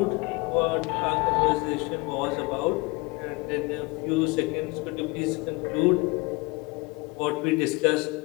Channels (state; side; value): quieter; right; 26.2 dB